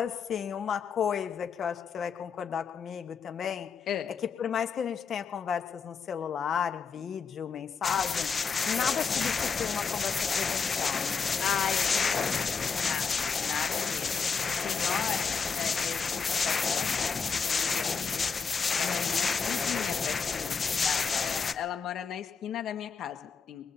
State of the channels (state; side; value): quieter; right; 5.8 dB